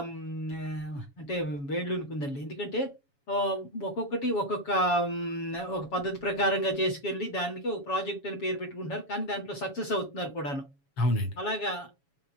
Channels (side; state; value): right; late; 7.2 ms